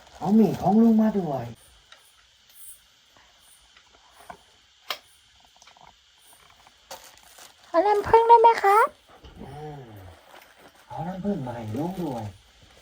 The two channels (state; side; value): identical; both; correlation 1.00